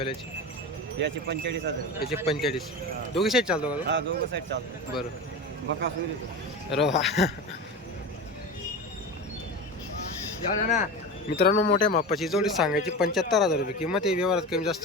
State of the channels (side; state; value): both; normal; correlation 0.27